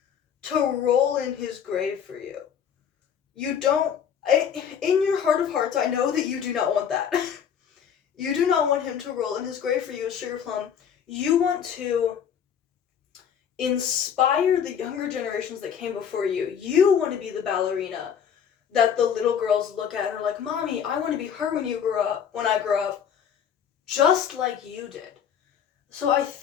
to roll in his grave for you. You don't... in your heart of hearts, I know that you do not want that. You do not want him to roll in his grave for you as Sugar Plum. You want to inspire the younger generations that came before you. You want to be the ballerina that the little girls look at and are like, Mommy, I want to be her when I grow up, just like you did. So I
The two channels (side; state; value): right; quieter; 8.1 dB